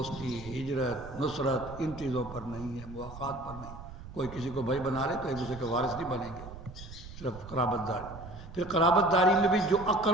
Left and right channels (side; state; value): right; noise; rumble, 14 dB below the sound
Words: ہجرت، نصرت ان چیزوں پر نہیں ہے، مواخات پر نہیں۔ کوئی کسی کو بھائی بنا لے تو ایک دوسرے کے وارث نہیں بنیں گے، صرف قرابت داری۔ پھر قرابت داری میں بھی جو